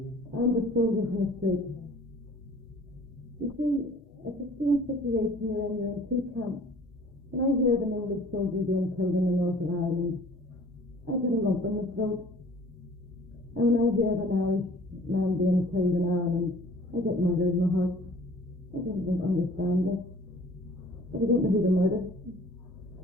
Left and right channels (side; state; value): both; normal; correlation 0.51